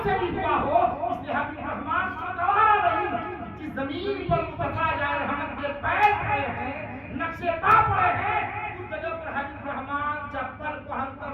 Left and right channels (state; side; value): identical; both; correlation 1.00